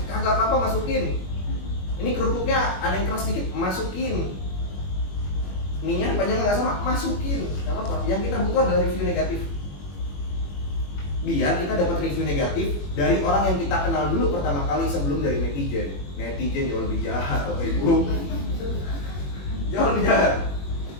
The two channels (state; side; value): late; right; 21 ms